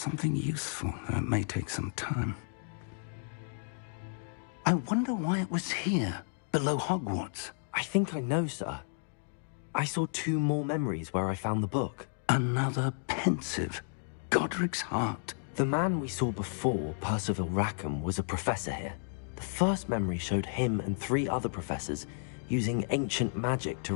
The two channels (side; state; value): right; silent; digital silence